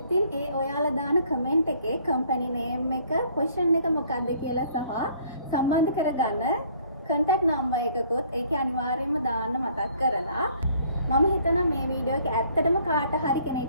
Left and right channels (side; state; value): both; inverted; correlation -0.60